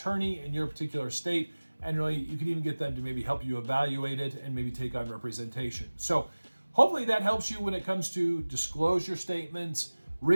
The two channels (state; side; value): inverted; both; correlation -1.00